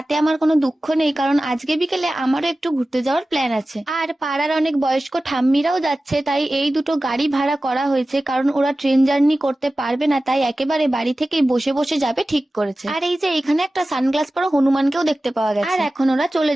আমার কোনো দুঃখ নেই, কারণ আজকে বিকেলে আমারও একটু ঘুরতে যাওয়ার প্ল্যান আছে। আর পাড়ার অনেক বয়স্ক ঠাম্মিরাও যাচ্ছে, তাই এই দুটো গাড়ি ভাড়া করা হয়েছে, কারণ ওরা ট্রেন জার্নি করতে পারবে না, তাই একেবারে বাড়ি থেকেই বসে বসে যাবে ঠিক করেছে। আর এই যে এখানে একটা সানগ্লাস পরা হনুমানকেও দেখতে পাওয়া গেছে। আর এখন ওরা চলে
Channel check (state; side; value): normal; both; correlation 0.96